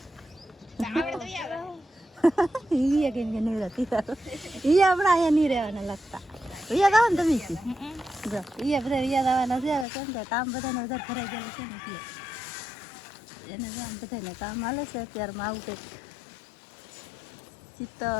ઈ કે નવરા થઈ જાઓ ઈ હમણાં અહીંયા નહીં રહેવાના લાગતા. યાદ આવે ને તમે જો ઈ બધા યાદ આવવાના છે. હવે કેમ કે કામ બધાને વધારે ભરાઈ ગયેલું છે ને એટલે એને જો આમ બધાને કામ હાલે છે અત્યારમાં. આવું કંઈક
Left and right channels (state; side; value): drops out; right; at 9.9 s